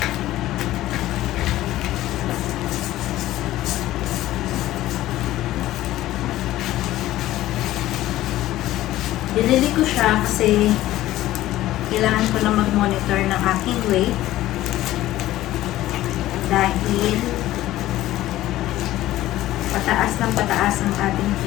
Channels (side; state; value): right; quieter; 15.1 dB